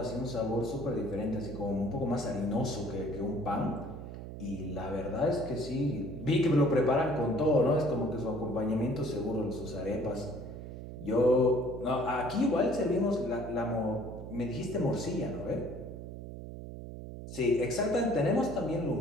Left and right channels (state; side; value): noise; right; hum, 10 dB below the sound